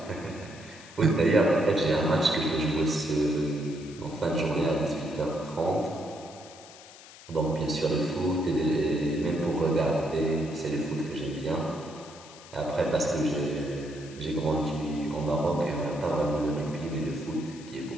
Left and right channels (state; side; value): noise; left; hiss, 19 dB below the sound